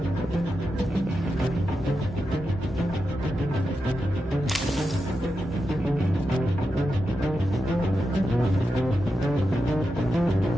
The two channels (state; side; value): normal; both; correlation 0.88